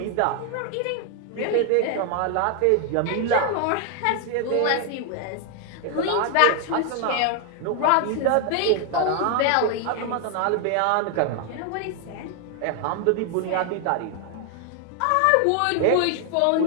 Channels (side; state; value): both; different; correlation 0.00